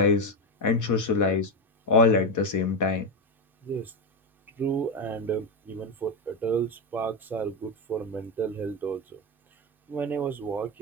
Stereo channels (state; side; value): normal; both; correlation 0.12